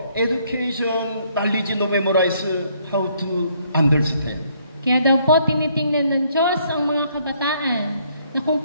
education knowledge no memorize how to understand. Kaya daw po tinitingnan ng Diyos ang mga kabataan na kung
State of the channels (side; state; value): both; inverted; correlation -0.67